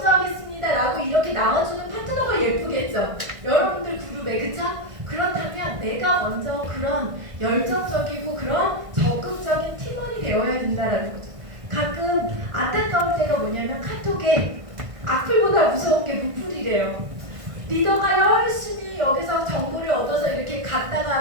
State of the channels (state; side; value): late; left; 1.6 ms